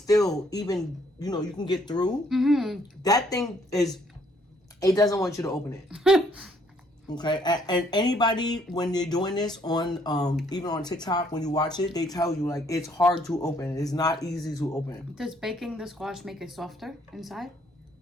even, you can get through. That thing is, it doesn't want you to open it. Okay? And anybody, when you're doing this on, even on TikTok, when you watch it, they tell you, like, it's hard to open. It's not easy to open. Does baking the squash make it softer inside?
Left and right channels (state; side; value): normal; both; correlation 0.66